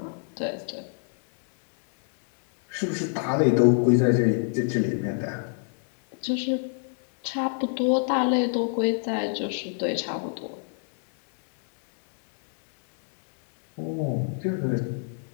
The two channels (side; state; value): right; silent; 61 dB below the other